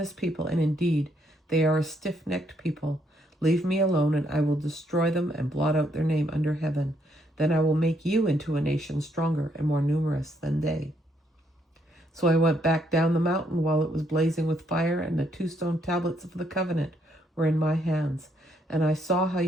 people, and indeed they are a stiff-necked people. Leave me alone, and I will destroy them and blot out their name under heaven. Then I will make you into a nation stronger and more numerous than they. So I went back down the mountain while it was blazing with fire, and the 2 stone tablets of the covenant were in my hands. And I saw how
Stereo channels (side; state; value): both; normal; correlation 0.72